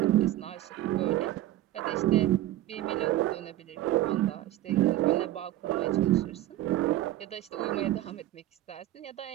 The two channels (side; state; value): left; quieter; 14.5 dB